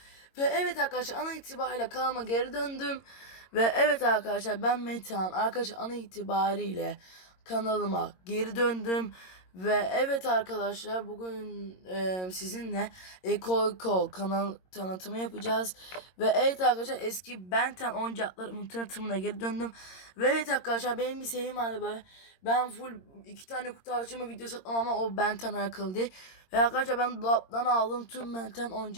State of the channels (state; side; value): late; right; 22 ms